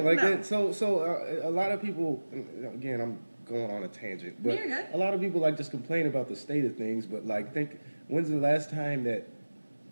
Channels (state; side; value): inverted; both; correlation -1.00